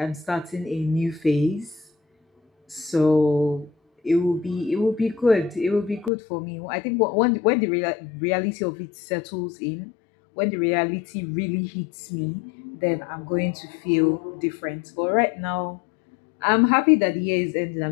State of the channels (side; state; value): right; drops out; at 6.1 s